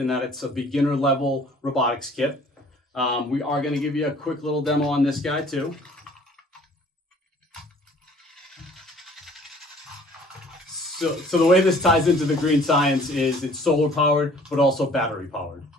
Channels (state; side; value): normal; both; correlation 0.53